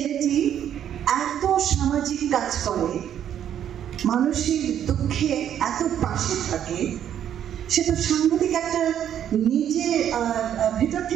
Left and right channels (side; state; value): left; quieter; 9.9 dB